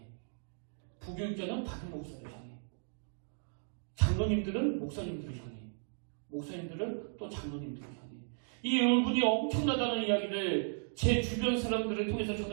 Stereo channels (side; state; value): left; silent; digital silence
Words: 부교육자는 담임 목사를 향해, 장로님들은 목사님들을 향해, 목사님들은 또 장로님들을 향해. 이 울분이 엄청나다는 이야기를 제 주변 사람들을 통해서